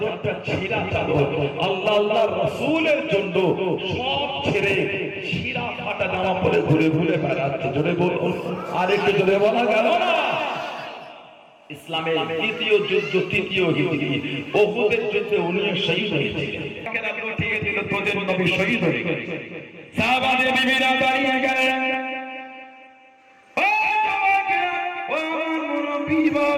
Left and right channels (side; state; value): both; identical; correlation 1.00